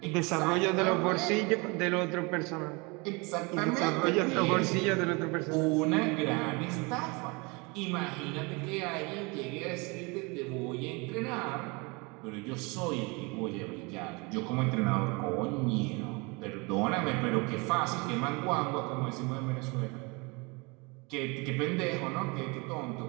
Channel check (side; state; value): left; quieter; 28.2 dB